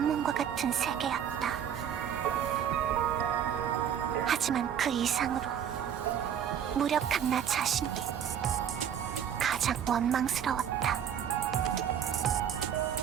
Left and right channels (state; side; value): quieter; left; 8.8 dB